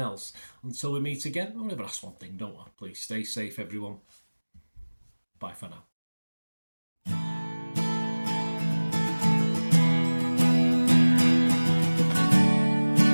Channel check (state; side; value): inverted; both; correlation -1.00